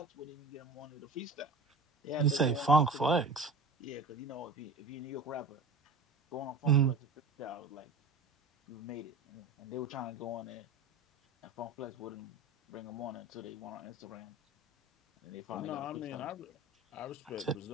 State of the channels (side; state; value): left; quieter; 3.2 dB